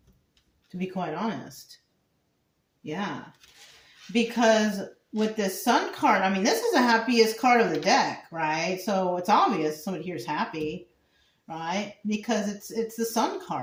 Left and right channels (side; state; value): both; identical; correlation 1.00